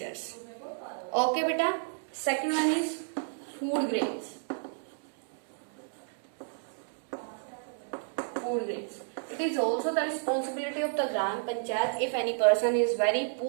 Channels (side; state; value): left; silent; 57 dB below the other